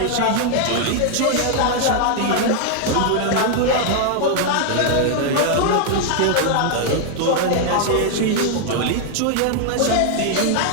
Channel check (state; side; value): different; both; correlation 0.00